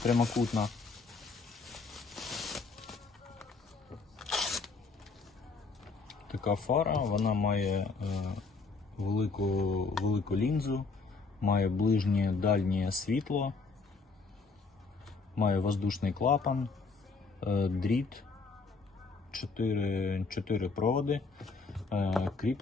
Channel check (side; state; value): right; quieter; 4.3 dB